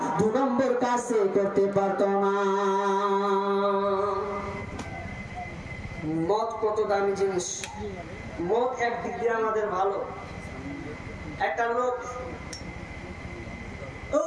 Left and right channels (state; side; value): identical; both; correlation 1.00